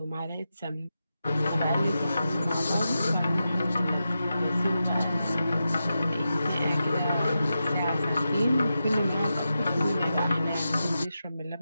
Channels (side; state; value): both; inverted; correlation -0.90